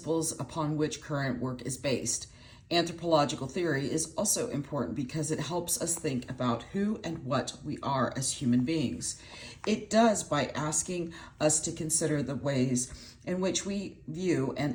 upon which current work is based. Anthropological theory is also important because it helps us think about who and what we are as human beings. It does by asking us to consider the ways in which we view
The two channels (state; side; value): identical; both; correlation 1.00